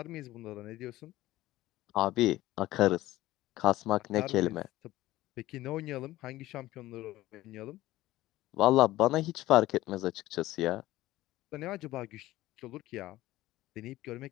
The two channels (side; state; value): right; quieter; 16.5 dB